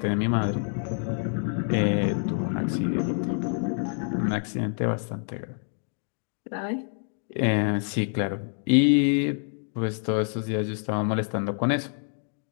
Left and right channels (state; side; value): silent; right; 57 dB below the other